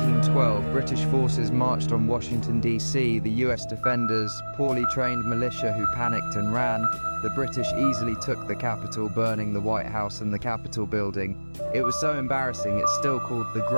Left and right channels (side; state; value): both; inverted; correlation -1.00